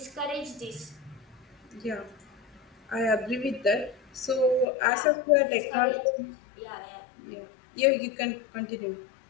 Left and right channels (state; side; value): drops out; right; at 4.7 s